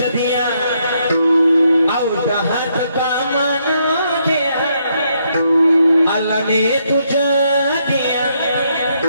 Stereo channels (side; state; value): both; inverted; correlation -0.75